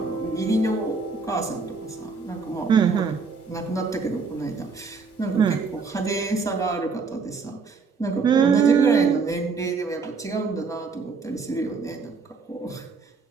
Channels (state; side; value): quieter; left; 4.8 dB